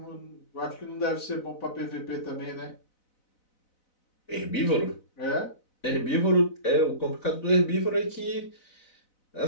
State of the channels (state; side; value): late; right; 4.0 ms